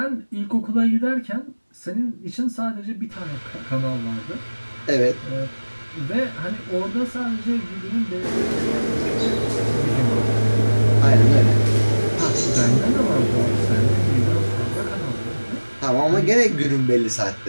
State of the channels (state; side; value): inverted; both; correlation -1.00